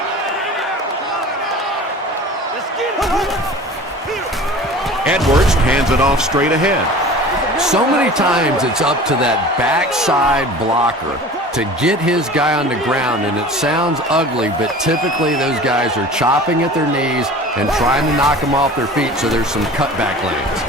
Edwards hands it off straight ahead. So many times it's up to that backside blocker to get his guy on the ground, and it sounds ugly, but typically those guys are chopping at their knees and trying to knock them off their feet, so there's some cutback lanes.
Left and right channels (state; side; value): normal; both; correlation 0.40